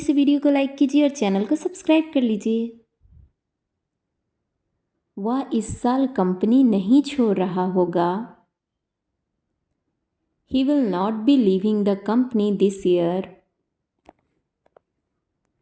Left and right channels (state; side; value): identical; both; correlation 1.00